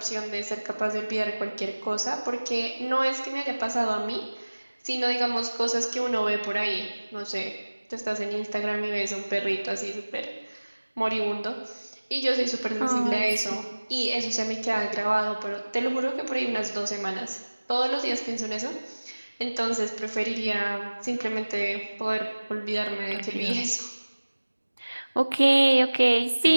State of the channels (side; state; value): both; inverted; correlation -1.00